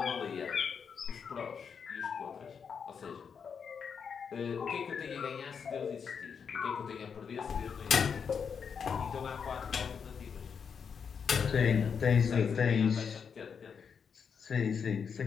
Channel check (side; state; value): right; quieter; 6.5 dB